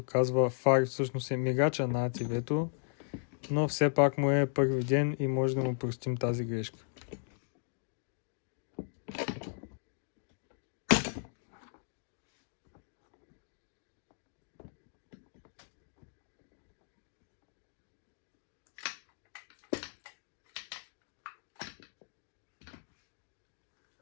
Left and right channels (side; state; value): right; silent; digital silence